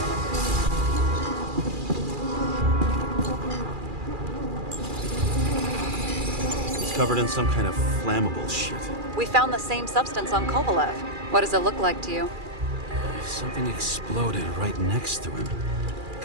He's covered in some kind of flammable shit. We found the same substance on Kovalev. What does it look like to you? Something exploded right next to him.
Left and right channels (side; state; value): left; late; 2.4 ms